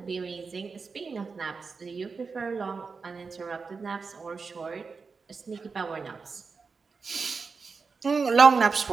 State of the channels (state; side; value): quieter; left; 4.8 dB